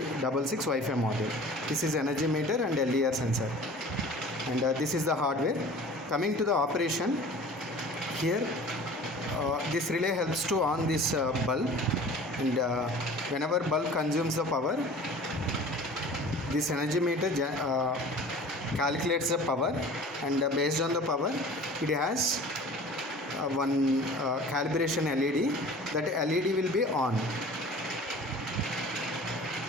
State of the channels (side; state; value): both; normal; correlation 0.43